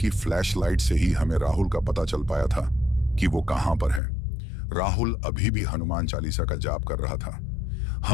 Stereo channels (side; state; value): right; drops out; at 4.0 s